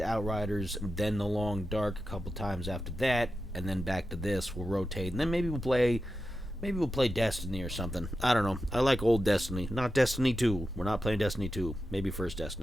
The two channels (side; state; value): both; normal; correlation 0.90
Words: Outriders, then The Long Dark a couple times after that, and then back to this. We'll rotate, and then maybe we'll play Destiny or something. I don't know. I like old Destiny. Not Destiny 2. We're not playing Destiny 2. Maybe first